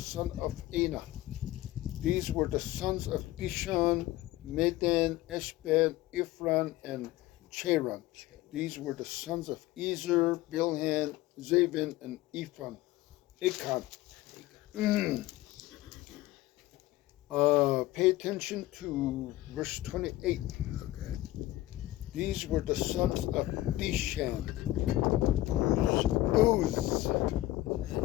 of Anah. These were the sons of Dishan, Medan, Eshban, Ephron, and Cheran. These were the sons of Ezer, Bilhan, Zavin, and Achan. Pay attention to verse 28. Okay. These were the sons of Dishan, Uz.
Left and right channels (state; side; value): quieter; right; 16.6 dB